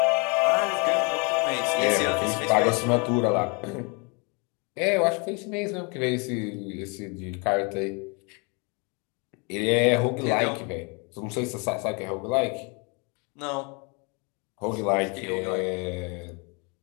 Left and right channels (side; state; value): right; quieter; 32.3 dB